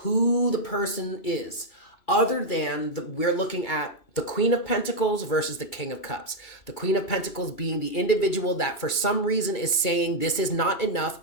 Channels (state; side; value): late; right; 2.3 ms